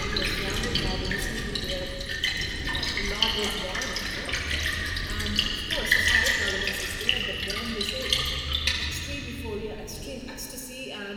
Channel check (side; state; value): both; identical; correlation 1.00